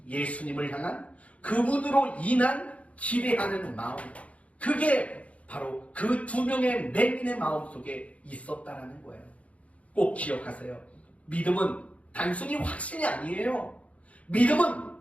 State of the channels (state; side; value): late; right; 0.065 ms